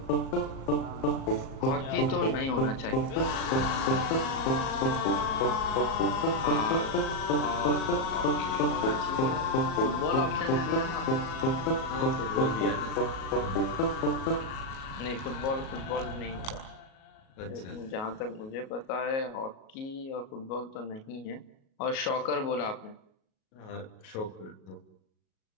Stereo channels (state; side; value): late; right; 37 ms